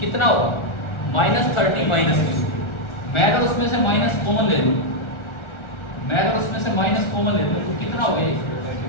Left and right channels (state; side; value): late; right; 1.4 ms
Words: कितना होगा? -30 माइनस Q। मैं अगर उसमें से माइनस कॉमन ले लूँ, तो कितना हो गया?